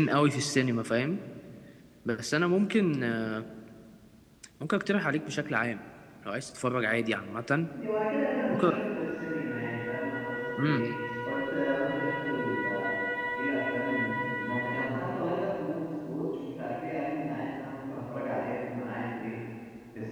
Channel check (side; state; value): both; identical; correlation 1.00